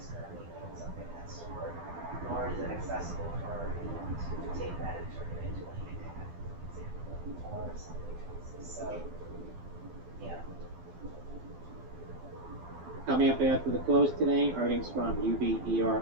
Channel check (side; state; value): left; late; 12 ms